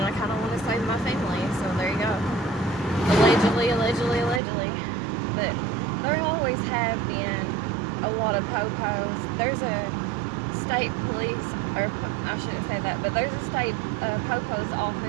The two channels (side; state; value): left; drops out; at 4.4 s